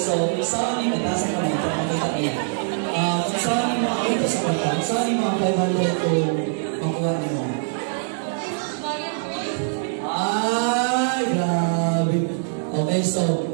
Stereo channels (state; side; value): silent; left; digital silence